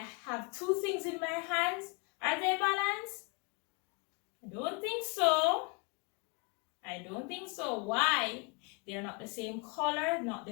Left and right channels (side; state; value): right; quieter; 31.6 dB